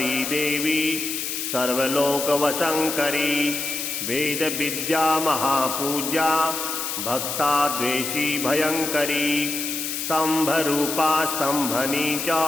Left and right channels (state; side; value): noise; left; hiss, 3 dB below the sound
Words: देवी सर्वलोकवशङ्करी वेदविद्या महापूज्या भक्ताद्वेषी भयङ्करी स्तम्भरूपा स्तम्भनी च